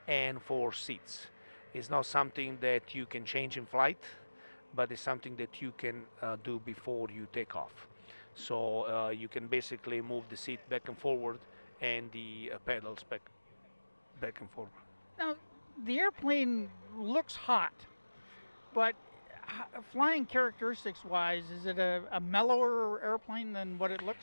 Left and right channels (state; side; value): inverted; both; correlation -1.00